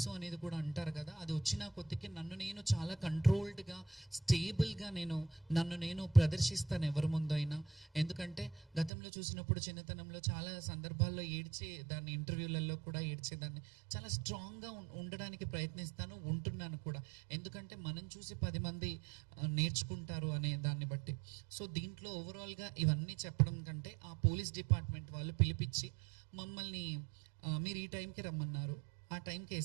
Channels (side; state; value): left; drops out; at 8.9 s